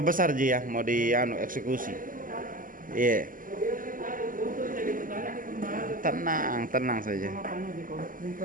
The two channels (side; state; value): left; late; 0.40 ms